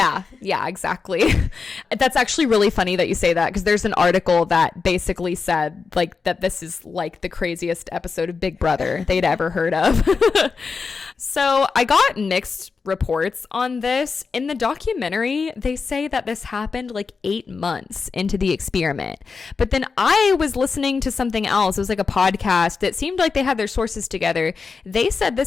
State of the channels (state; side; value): quieter; right; 4.9 dB